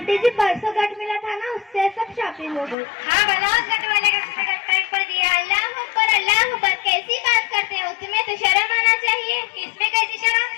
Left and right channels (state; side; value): drops out; right; at 2.8 s